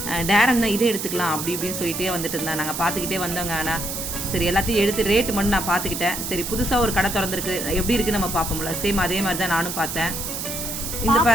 டேரன் தான் இதே எடுத்துக்கலாம் அப்படி இப்படின்னு சொல்லிட்டே வந்துட்டு இருந்தா. நாங்கள் பார்த்துக்கிட்டே வந்தோங்க. ஆனால் சரி எல்லாத்தையும் எடுத்து ரேட்டு மட்டும் நான் பார்த்துக்கிட்டேன். சரி புதுசாக ஒரு கடை திறந்துருக்கு, எப்படி இருக்குன்னு நம்ம பார்ப்போம்ல, சேம் அதே மாதிரி தான் நானும் பார்த்தேன். இந்த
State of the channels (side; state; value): right; noise; hiss, 5 dB below the sound